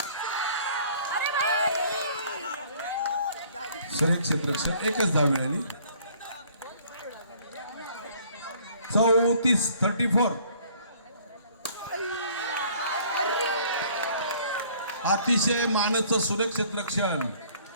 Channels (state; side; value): inverted; both; correlation -0.56